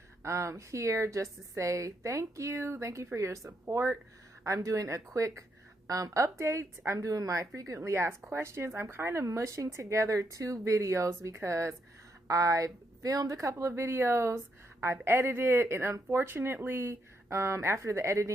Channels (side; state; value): both; normal; correlation 0.78